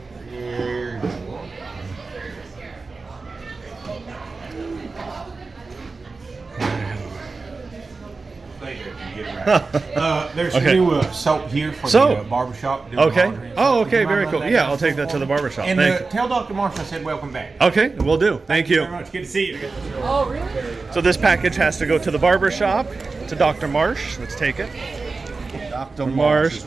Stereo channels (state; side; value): quieter; left; 4.0 dB